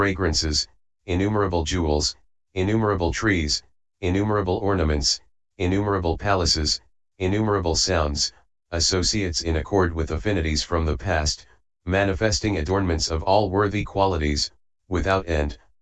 innumerable jewels, innumerable trees, innumerable ornaments, innumerable palaces, innumerable sounds, associates in accord with affinities from the past, manifesting adornments of all worthy qualities, without end,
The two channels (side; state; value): both; identical; correlation 1.00